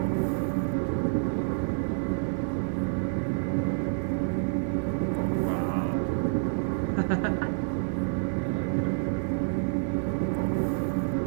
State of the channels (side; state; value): left; silent; 59 dB below the other